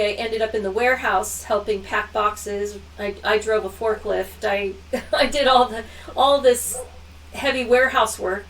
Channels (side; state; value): both; identical; correlation 1.00